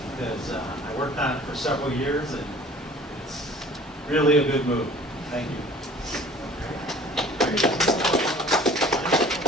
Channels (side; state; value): both; normal; correlation 0.49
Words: because I worked on it for several years, and it's really a good move. Thank you.